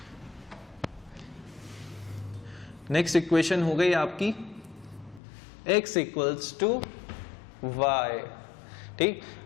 नेक्स्ट इक्वेशन हो गई आपकी x इक्वल्स टू वाई, ठीक।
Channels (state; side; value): drops out; right; at 5.2 s